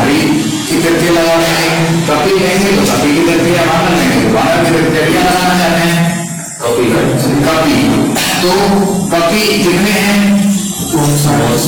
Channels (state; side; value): identical; both; correlation 1.00